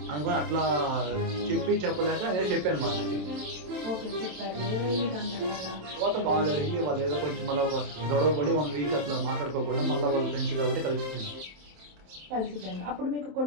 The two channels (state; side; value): late; left; 27 ms